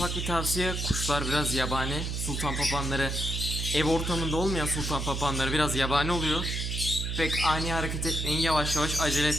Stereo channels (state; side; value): noise; right; hum, 2 dB below the sound